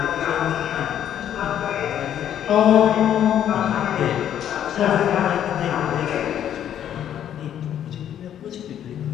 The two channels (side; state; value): right; quieter; 10.2 dB